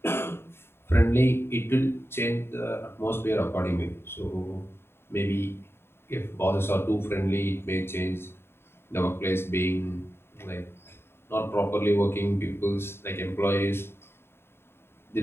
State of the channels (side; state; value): right; late; 0.11 ms